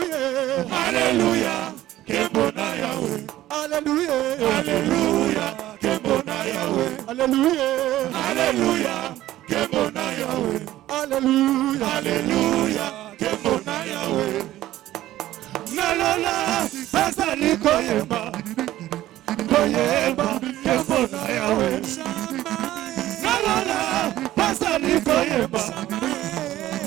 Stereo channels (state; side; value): quieter; left; 14.6 dB